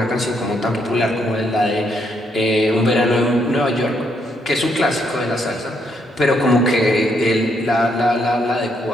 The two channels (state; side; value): normal; both; correlation 0.75